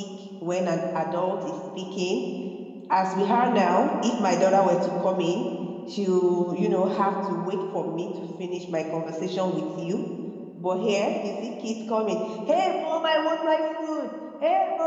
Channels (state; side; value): identical; both; correlation 1.00